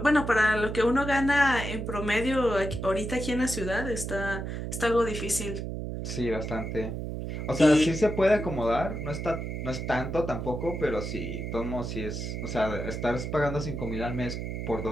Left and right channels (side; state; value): right; noise; hum, 5 dB below the sound